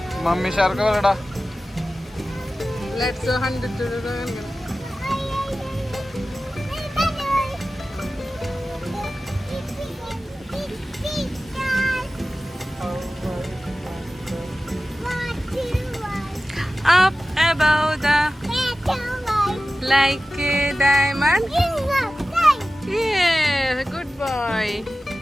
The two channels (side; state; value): both; normal; correlation 0.95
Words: മമ്മി ഷാർക്ക് പറയടാ. Let's 100 up above the like a diamond. Yeah, good boy.